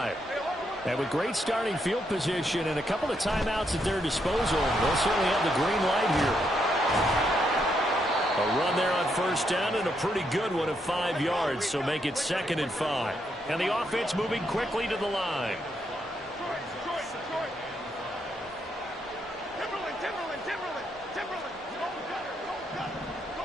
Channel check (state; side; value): normal; both; correlation 0.78